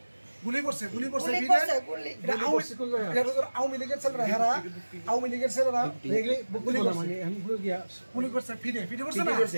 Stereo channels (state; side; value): inverted; both; correlation -1.00